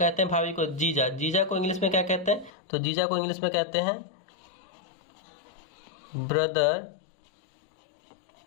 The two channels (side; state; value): right; drops out; at 2.5 s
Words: हैं भाभी को। जीजा, जीजा को इंग्लिश में क्या कहते हैं, तो जीजा को इंग्लिश में कहते हैं brother